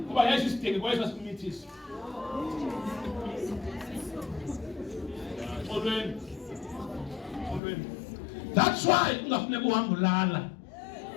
kuba yesu isidenge kwesa simithisa olweni that's why ungafuneka uhambe ulala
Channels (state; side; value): drops out; right; at 7.6 s